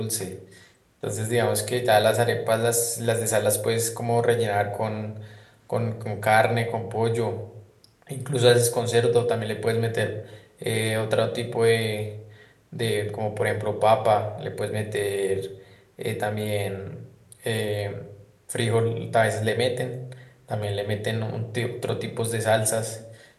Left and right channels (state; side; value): identical; both; correlation 1.00